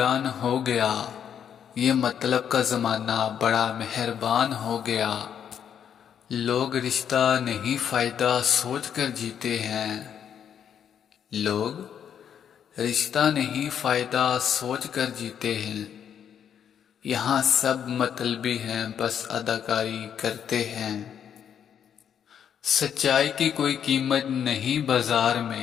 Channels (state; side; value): quieter; right; 8.6 dB